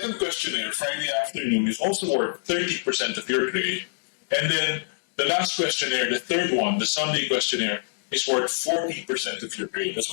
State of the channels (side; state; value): right; silent; digital silence